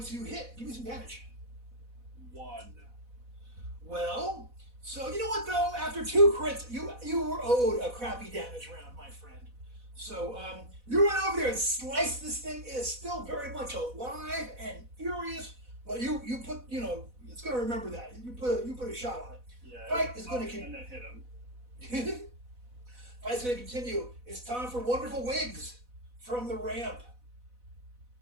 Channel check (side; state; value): left; late; 4.1 ms